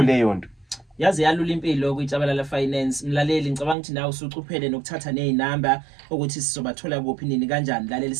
leyo nto. Yazi yalula impilo kuJabalala Finance mlaleli ngicabanga ukuthi nawe usucuphele nokuthatha nezinamba ukuthi sizobathola kuphi nini kanjani mlaleli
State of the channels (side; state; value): left; drops out; at 3.8 s